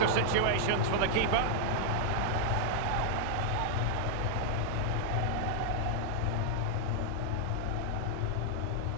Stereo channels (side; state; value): both; different; correlation 0.00